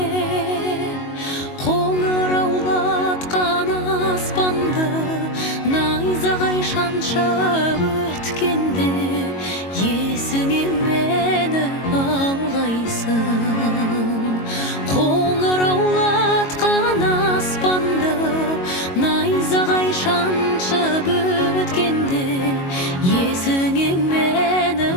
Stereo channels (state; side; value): late; right; 22 ms